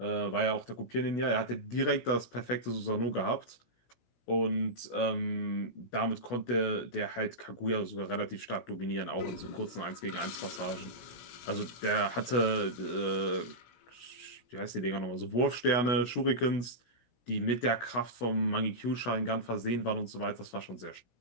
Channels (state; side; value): late; right; 16 ms